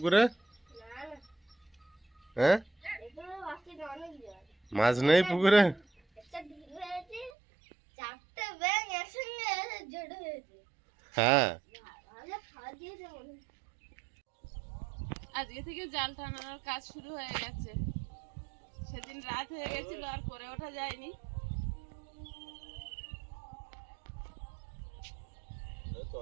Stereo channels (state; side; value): drops out; left; at 7.3 s